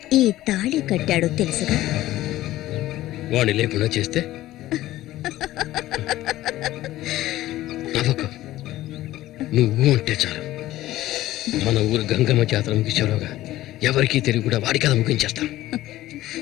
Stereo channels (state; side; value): quieter; right; 15.5 dB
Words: ఈ తాళి కట్టాడు, తెలుసుగా. వాణ్ణి లేకుండా చేస్తే నవ్వకు. నువ్వు అంటే చాలు. మన ఊరు గంగమ్మ జాతర ముగించేలోగా ఎవరికీ తెలివి కూడా వాడి కథ ముగించేస్తాం.